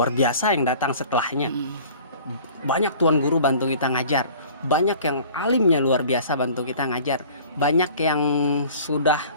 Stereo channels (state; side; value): inverted; both; correlation -0.47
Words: biasa yang datang setelahnya. Banyak tuan guru bantu kita ngajar, banyak yang alimnya luar biasa bantu kita ngajar, banyak yang sudah